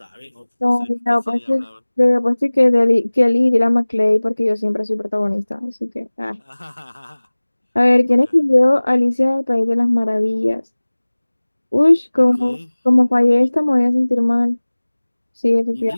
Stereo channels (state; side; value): inverted; both; correlation -1.00